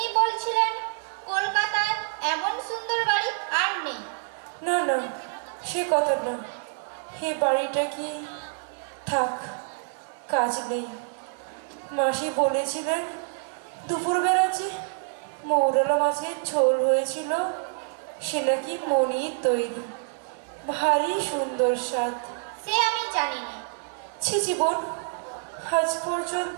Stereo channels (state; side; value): silent; left; digital silence